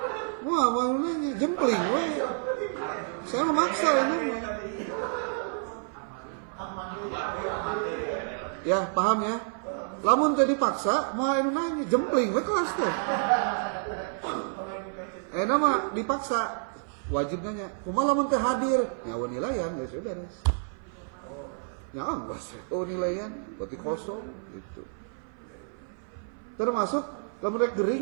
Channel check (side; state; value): left; silent; 56 dB below the other